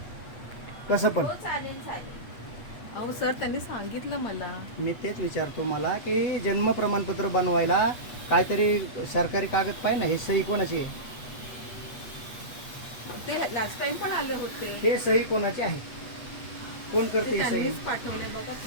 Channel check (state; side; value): late; right; 8.3 ms